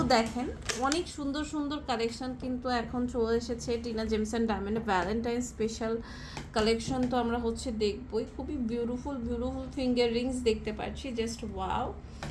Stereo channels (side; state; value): both; identical; correlation 1.00